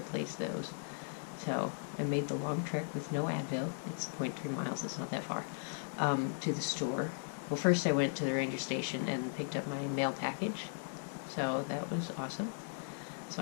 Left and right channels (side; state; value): right; silent; digital silence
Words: those. So I made the long trek with no Advil, it's 0.3 miles, it's not that far, to the store. Well, first I went to the ranger station and picked up my mail package, so that was awesome. So